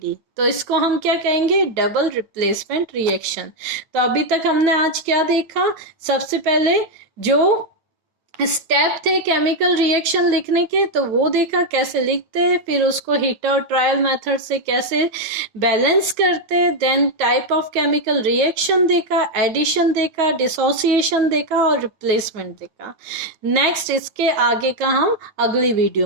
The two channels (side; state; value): left; late; 9.2 ms